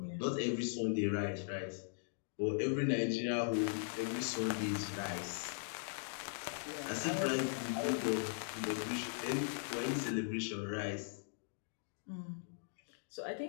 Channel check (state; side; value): silent; right; digital silence